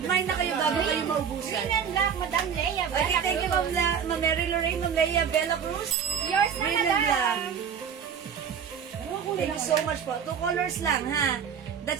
na kayo bago kayo maubusan. Green and black, madam Leia. Okay, thank you, Ma'am Mary Lorraine, Ma'am Leia, Bella Cruz. Yours na, Green and black. madam. Thank you so much po. 2 colors lang, ha?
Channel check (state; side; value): quieter; left; 7.5 dB